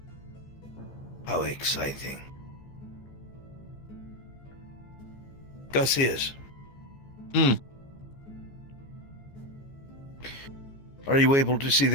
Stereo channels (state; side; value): late; right; 15 ms